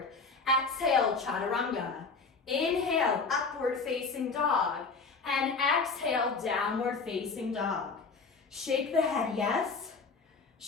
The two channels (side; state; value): right; quieter; 4.4 dB